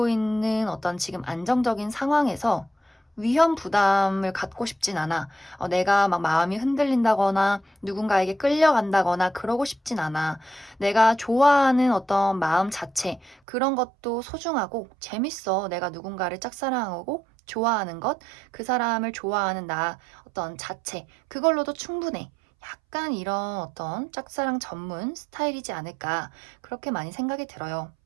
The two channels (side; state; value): left; drops out; at 13.4 s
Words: 있는 어떤 지금 안정적인 상황에서 위험 부담을 갖고 싶진 않아. 내가 막 마음이 흔들린다거나 누군가에게 끌려간다거나 그러고 싶진 않아. 내가 좋아하는 어떤 마음 자체, 그런 것도 소중하고 재밌어. 내가 누군가를 짝사랑하고 좋아하는 것, 그 사람을 좋아하는 나 어떤 자체, 그걸로도 충분해. 약간 이런 어떤 짝사랑 전문 스타일이지 않을까, 그렇게 많이 생각이 들어요.